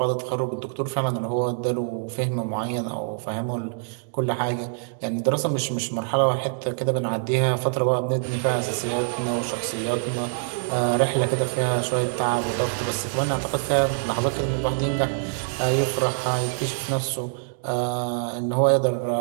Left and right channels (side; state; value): left; silent; digital silence